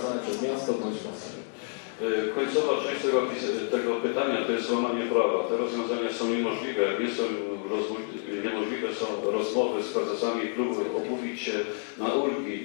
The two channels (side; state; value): right; silent; 59 dB below the other